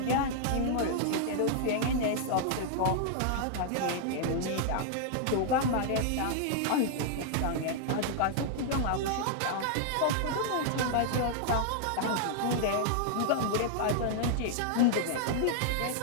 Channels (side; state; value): both; different; correlation -0.01